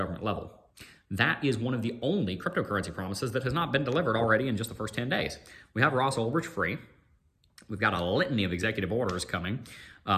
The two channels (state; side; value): identical; both; correlation 1.00